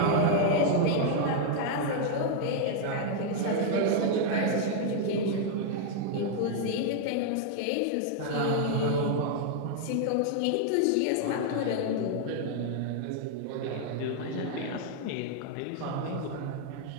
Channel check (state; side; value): different; both; correlation 0.00